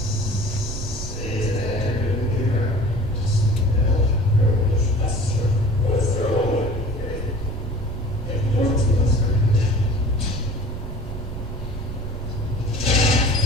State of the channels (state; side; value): noise; right; rumble, 10 dB below the sound